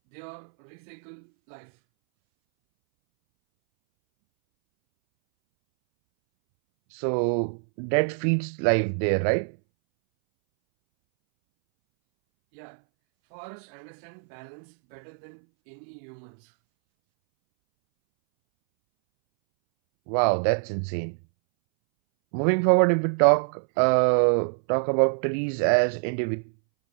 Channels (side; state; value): left; silent; 62 dB below the other